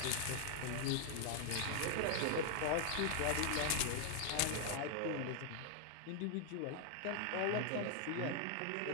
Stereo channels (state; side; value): different; both; correlation 0.00